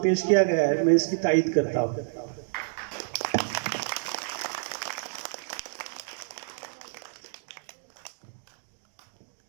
पेश किया गया है, मैं इसकी तायीद करता हूँ।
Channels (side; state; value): left; silent; digital silence